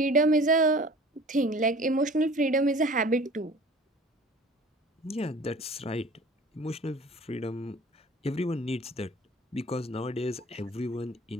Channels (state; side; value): normal; both; correlation 0.45